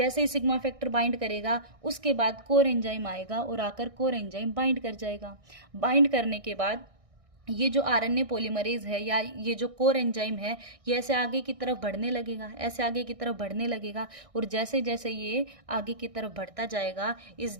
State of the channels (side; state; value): left; late; 1.6 ms